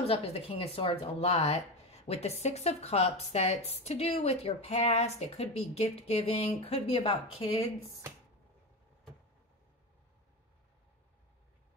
up as the King of Swords a lot. With the Six of Cups, that's to do with your past. It could be gift giving. Could be about kids.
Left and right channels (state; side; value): normal; both; correlation 0.20